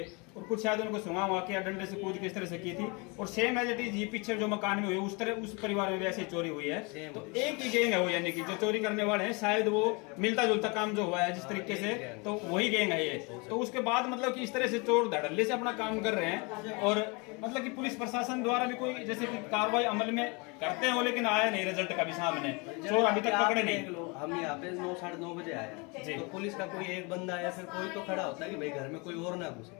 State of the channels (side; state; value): right; quieter; 29.5 dB